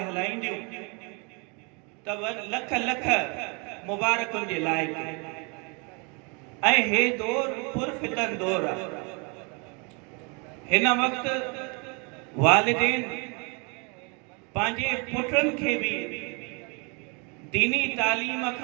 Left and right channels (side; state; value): left; quieter; 32.7 dB